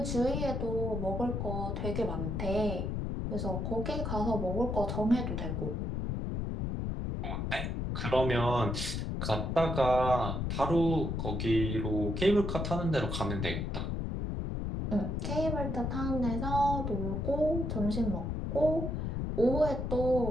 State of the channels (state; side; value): noise; left; rumble, 2 dB below the sound